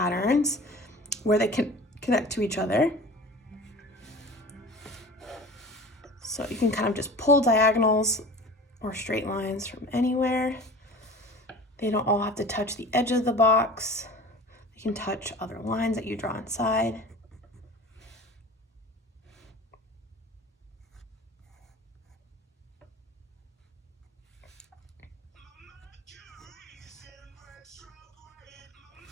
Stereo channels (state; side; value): normal; both; correlation 0.39